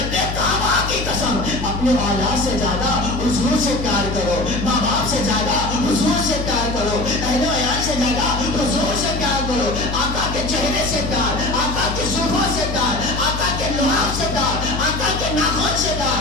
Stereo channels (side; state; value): left; noise; hum, 5 dB below the sound